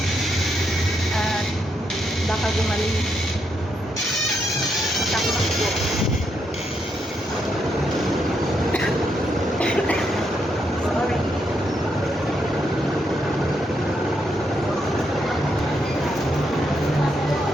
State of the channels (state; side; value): normal; both; correlation 0.79